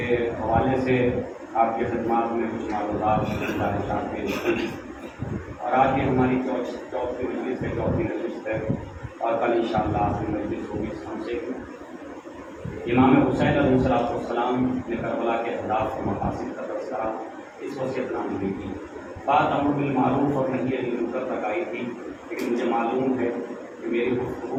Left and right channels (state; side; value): identical; both; correlation 1.00